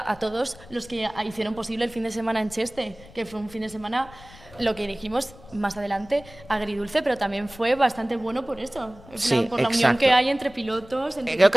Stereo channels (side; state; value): left; noise; rumble, 21 dB below the sound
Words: a todos los que hicieron posible el fin de semana en Cheste, que fue un fin de semana, lo que dijimos más adelante, agridulce, pero también fue bastante bueno por eso, por la unión que hay entre pilotos, entre creo